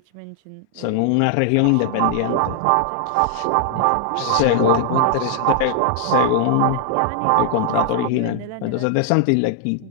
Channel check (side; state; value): both; different; correlation 0.00